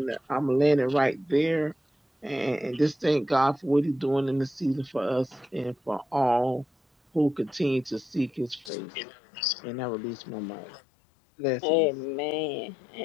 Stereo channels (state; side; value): drops out; right; at 8.7 s